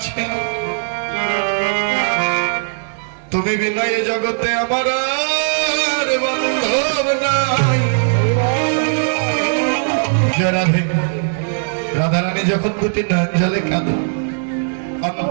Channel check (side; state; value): left; silent; digital silence